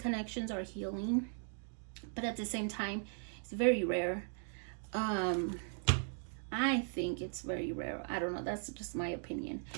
are healing, but at the same time, it's very rare. I think it's very rare. I don't know. That's just my opinion.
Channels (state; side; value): silent; left; 52 dB below the other